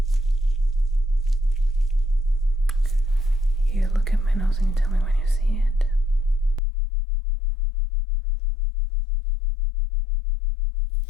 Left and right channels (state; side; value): drops out; right; at 6.6 s